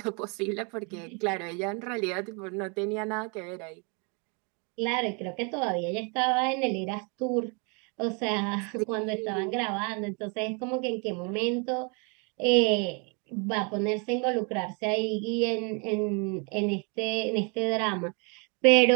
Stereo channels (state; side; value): quieter; left; 34.3 dB